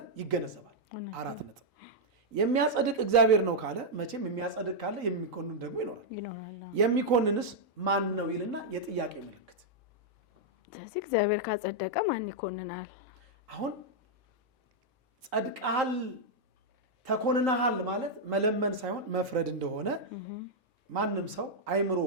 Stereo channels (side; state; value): both; normal; correlation -0.04